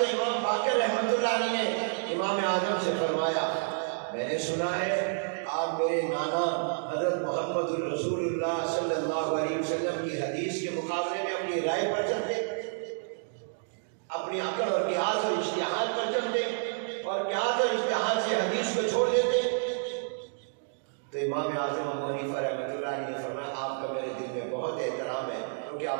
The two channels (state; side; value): silent; left; digital silence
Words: امام باقر رحمۃ اللہ علیہ نے امام اعظم سے فرمایا میں نے سنا ہے آپ میرے نانا حضرت محمد الرسول اللہ صلی اللہ علیہ وسلم کی حدیث کے مقابلے میں اپنی رائے پر چلتے، اپنی عقل اور قیاس اور اجتہاد پر چلتے اور قیاس اور اجتہاد سے حدیث کو چھوڑ دیتے۔ تو امام اعظم ابو حنیفہ رحمۃ اللہ علیہ نے فرمایا آپ کا میرے دل میں بہت احترام ہے کیونکہ